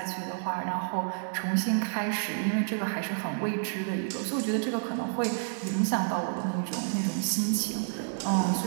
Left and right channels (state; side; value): silent; left; 58 dB below the other